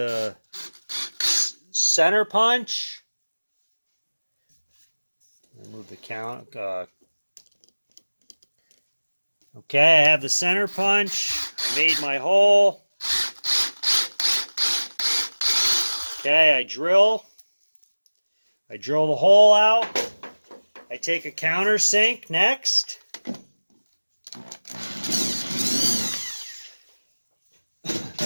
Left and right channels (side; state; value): both; inverted; correlation -1.00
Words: center punch. Move the count. Okay, I have the center punch. I made my hole. Okay, I drill the hole out. I take a countersink next.